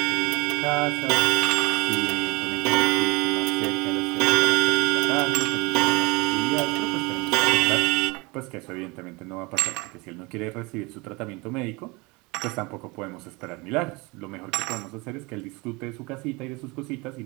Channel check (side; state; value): left; quieter; 25.7 dB